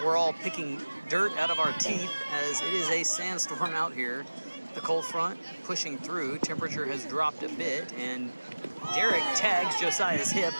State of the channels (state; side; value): inverted; both; correlation -1.00